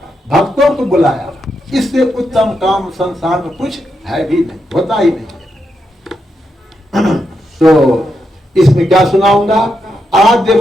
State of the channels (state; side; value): normal; both; correlation 0.84